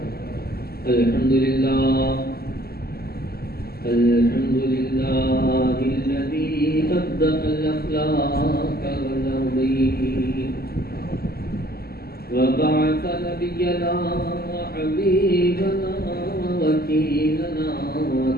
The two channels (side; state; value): right; late; 0.45 ms